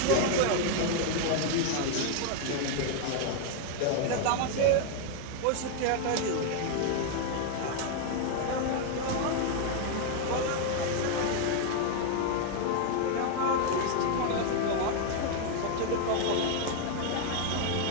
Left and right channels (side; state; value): both; different; correlation 0.00